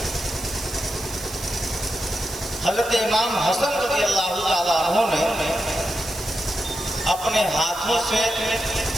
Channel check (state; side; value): noise; right; hiss, 12 dB below the sound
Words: حضرت امام حسن رضی اللہ تعالیٰ عنہ نے اپنے ہاتھوں سے